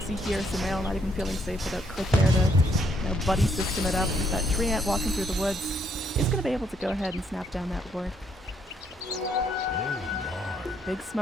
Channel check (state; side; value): normal; both; correlation 0.71